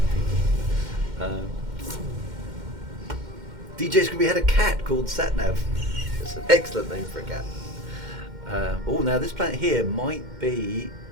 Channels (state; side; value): late; left; 2.1 ms